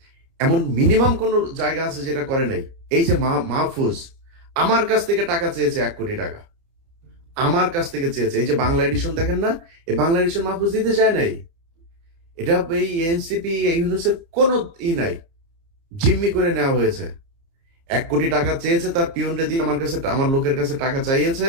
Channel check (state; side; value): late; left; 30 ms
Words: এমন মিনিমাম কোন জায়গা আছে যেটা করে নাই? এই যে মাহফুজ আমার কাছ থেকে টাকা চেয়েছে, 1 কোটি টাকা আমার কাছ থেকে চেয়েছে। এই যে বাংলা এডিশন দেখেন না, এই বাংলা এডিশন মাহফুজ দিতে চায় নাই। এটা এই এনসিপি ইউনুসের কোনো নাই, জিম্মি করে নেওয়া হয়েছে। 1 কোটি টাকা চেয়েছে, তার পিয়নরে দিয়ে আমার কাছে, আমার লোকের কাছে টাকা চাইয়েছে।